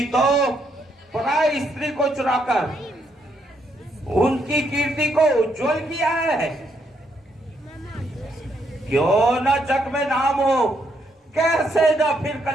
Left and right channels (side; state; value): both; normal; correlation 0.75